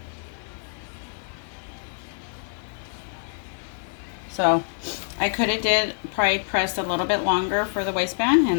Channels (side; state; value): right; silent; digital silence